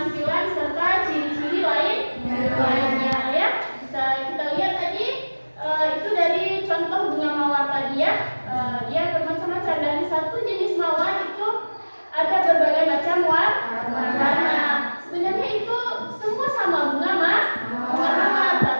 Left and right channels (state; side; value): inverted; both; correlation -1.00